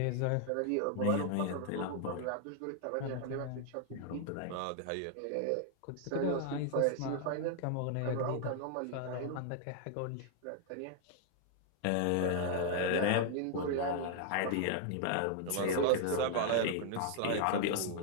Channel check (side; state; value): both; different; correlation 0.00